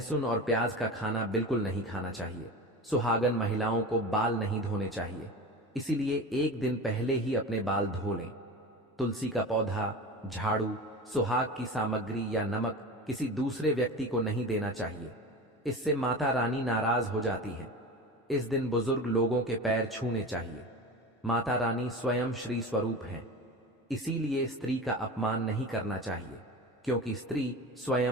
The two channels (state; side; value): normal; both; correlation 0.30